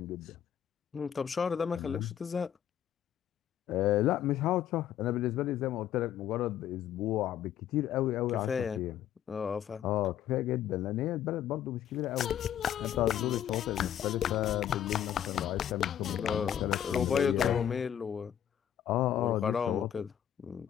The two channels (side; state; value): right; quieter; 10.3 dB